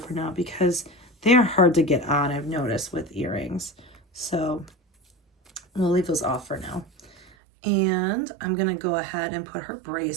now because they are hard to get on, I've noticed, with earrings. So we'll leave those off for now. And I'm going to go ahead and put her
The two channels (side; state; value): left; drops out; at 7.3 s